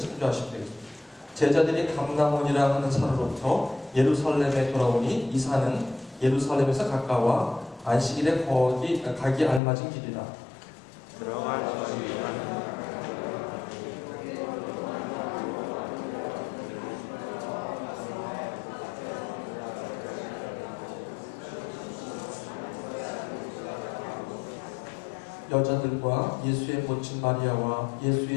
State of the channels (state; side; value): drops out; right; at 9.6 s